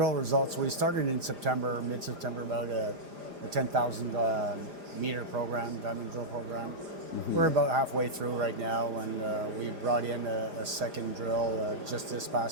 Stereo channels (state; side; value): late; left; 4.9 ms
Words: results, we started in September, mid-September, about a 10,000 meter program, diamond drill program. Mm-hmm. We're about halfway through right now, and we brought in a second drill just this